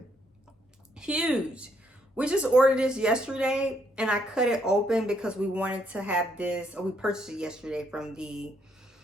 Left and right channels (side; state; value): both; normal; correlation 0.72